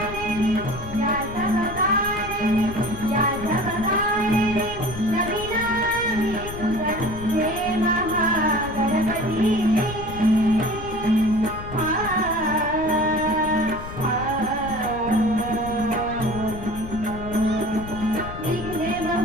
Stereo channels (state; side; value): noise; left; rumble, 11 dB below the sound